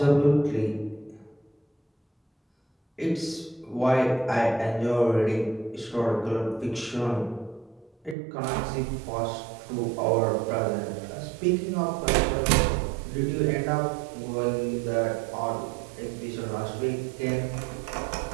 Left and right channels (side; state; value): left; drops out; at 8.2 s